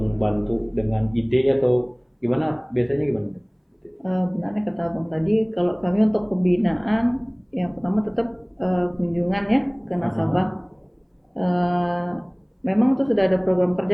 bantu dengan ide atau gimana, biasanya gimana? Benarnya kata Abang tadi, kalau kami untuk pembinaan yang pertama tetap kunjungan ya ke nasabah. Memang itu sudah ada program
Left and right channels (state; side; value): identical; both; correlation 1.00